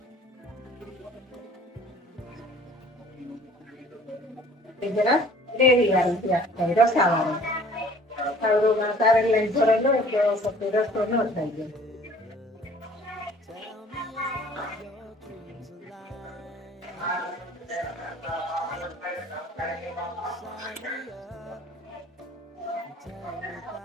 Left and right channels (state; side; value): normal; both; correlation 0.52